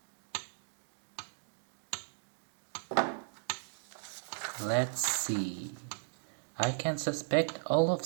Let's see. I can suspect all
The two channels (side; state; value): left; silent; digital silence